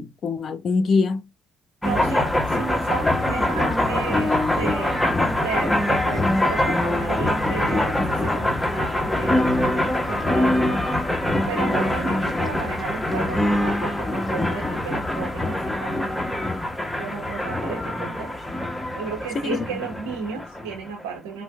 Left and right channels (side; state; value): both; normal; correlation 0.83